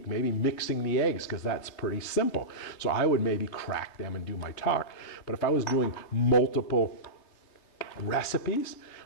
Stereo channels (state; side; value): late; right; 3.3 ms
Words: maybe mixing the eggs, because that's pretty simple. So I would maybe crack them and do my talk. But if I was doing multiple recipes,